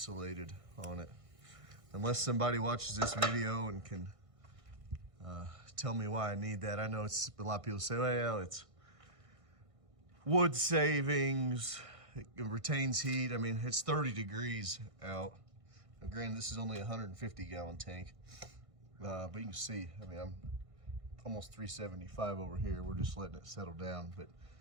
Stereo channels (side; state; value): left; late; 1.6 ms